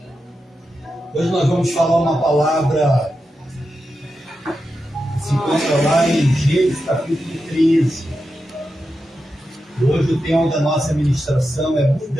Hoje nós vamos falar uma palavra que se encontra lá em Gênesis capítulo 13. Hoje o tema da nossa ministração é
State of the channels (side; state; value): both; normal; correlation 0.89